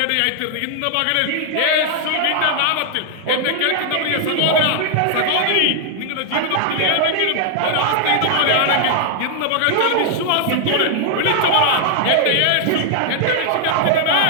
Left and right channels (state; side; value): different; both; correlation 0.00